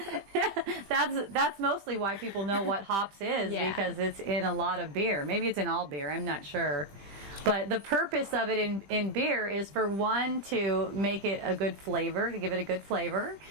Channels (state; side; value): late; left; 20 ms